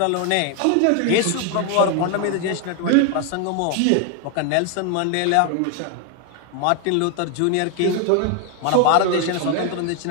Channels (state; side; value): different; both; correlation 0.01